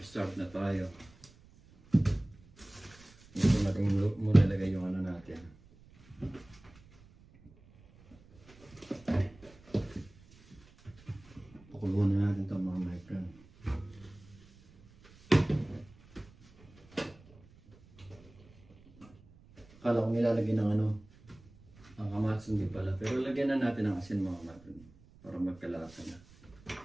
na tayo. Ito natin muna lagay yung ano natin. Pakuluan na natin ito mga my friend. Akala ko nilalagay ng ano, ang kamatis, hindi pala. Pero lagyan na natin ng asin mga my friend para magkalasa na.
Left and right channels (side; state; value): right; noise; rumble, 25 dB below the sound